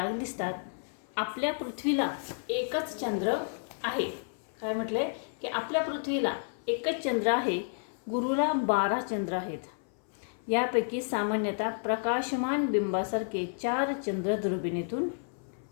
दिसतात. आपल्या पृथ्वीला एकच चंद्र आहे. काय म्हटलंय की आपल्या पृथ्वीला एकच चंद्र आहे. गुरुला 12 चंद्र आहेत. यापैकी सामान्यतः प्रकाशमान बिंबासारखे 4 चंद्र दुर्बिणीतून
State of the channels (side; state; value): right; silent; 57 dB below the other